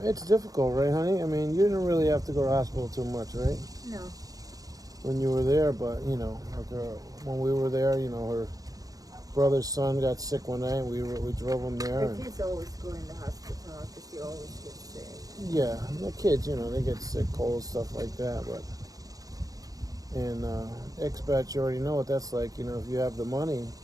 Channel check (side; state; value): left; late; 0.18 ms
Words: it's difficult, right, honey? I mean, you didn't really have to go to the hospital too much, right? no. When you were there, but, when we were there, her brother's son got sick one night. We drove him there. The kids always go in the hospital because they always get sick. Yeah, the kids, they get sick, cold, stuff like that, but... And expats, you already know what that's like. If you have the money,